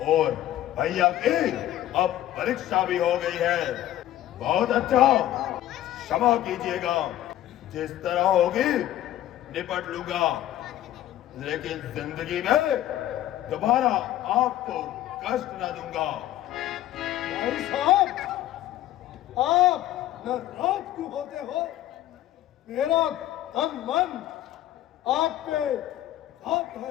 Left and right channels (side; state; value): right; quieter; 13.3 dB